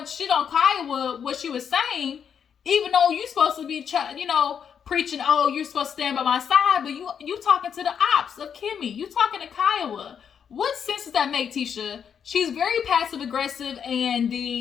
of shit on Kiowa, what she was saying, even though you're supposed to be, preaching, oh, you're supposed to stand by my side, but you talking to the ops of Kimmy. You talking to Kiowa. What sense does that make, Tisha? She's very passive aggressive, and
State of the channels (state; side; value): quieter; right; 7.6 dB